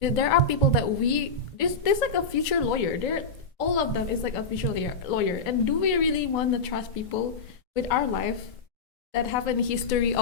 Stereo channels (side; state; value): right; quieter; 4.0 dB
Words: are people that there's like a future lawyer. All of them is like a future lawyer. And do we really want to trust people with our life that have a history